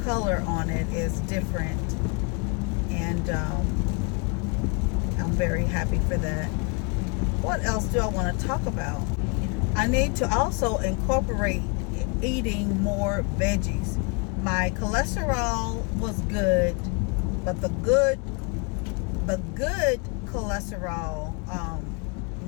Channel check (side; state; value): right; quieter; 32.4 dB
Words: color on it is different, and I'm very happy for that. What else do I want to talk about? I need to also incorporate eating more veggies. My cholesterol was good, but the good cholesterol